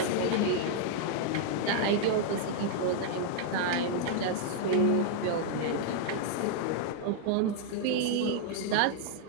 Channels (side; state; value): both; different; correlation -0.01